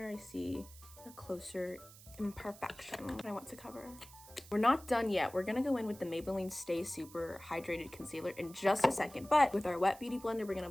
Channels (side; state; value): right; noise; hiss, 19 dB below the sound